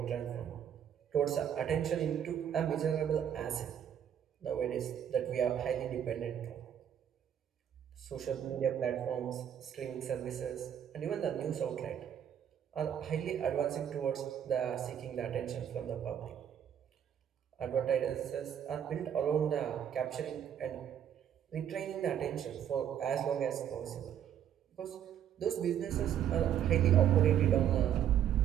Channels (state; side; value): quieter; left; 9.5 dB